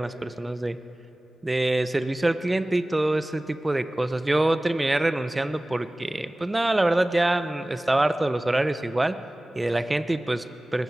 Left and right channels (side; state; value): both; normal; correlation 0.98